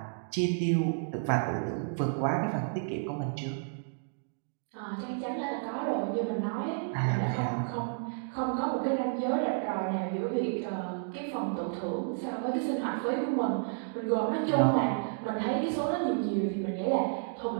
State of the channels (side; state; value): left; silent; digital silence